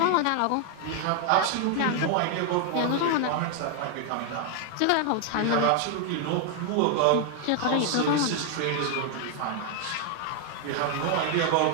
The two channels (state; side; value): different; both; correlation 0.00